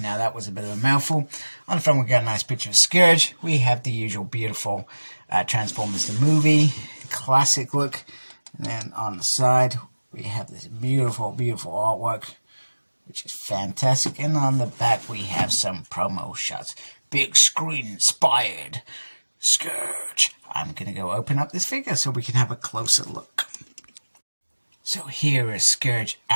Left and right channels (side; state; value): both; inverted; correlation -1.00